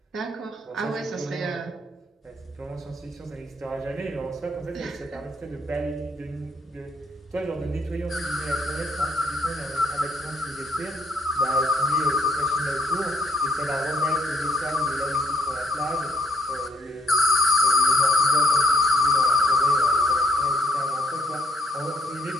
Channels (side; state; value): both; normal; correlation 0.71